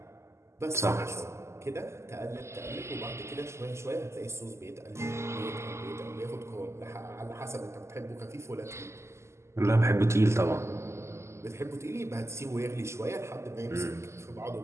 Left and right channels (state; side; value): late; left; 0.13 ms